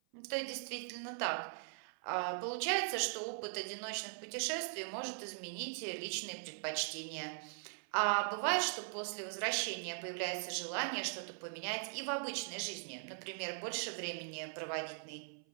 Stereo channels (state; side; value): silent; left; 51 dB below the other